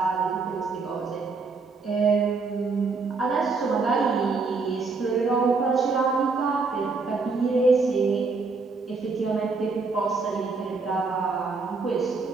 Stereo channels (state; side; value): quieter; left; 4.3 dB